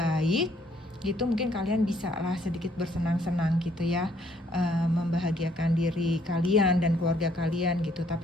gitu. Mungkin kalian bisa lah sedikit bersenang-senang gitu ya, membahagiakan diri kalian dan keluarga kalian gitu.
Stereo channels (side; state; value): both; normal; correlation 0.66